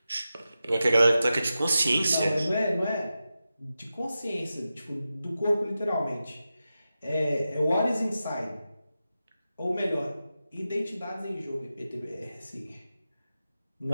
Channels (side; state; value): both; inverted; correlation -0.92